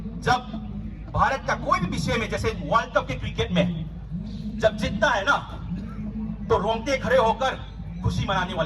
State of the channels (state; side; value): identical; both; correlation 1.00